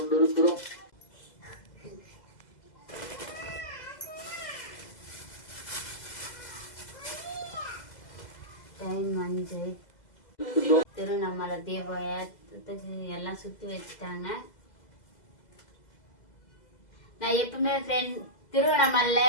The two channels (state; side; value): late; right; 2.0 ms